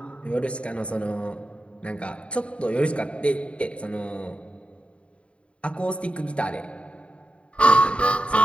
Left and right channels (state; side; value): late; right; 0.060 ms